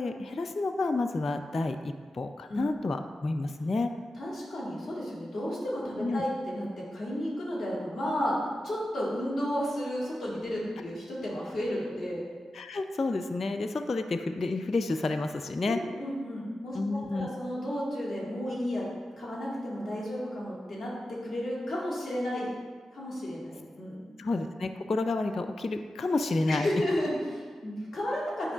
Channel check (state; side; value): normal; both; correlation 0.92